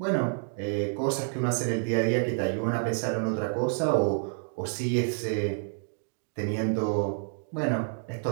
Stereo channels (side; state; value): left; silent; 59 dB below the other